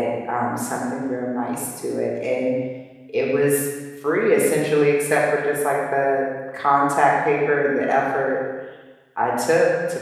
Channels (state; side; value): identical; both; correlation 1.00